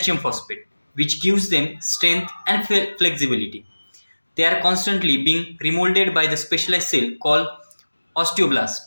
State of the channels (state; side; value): inverted; both; correlation -1.00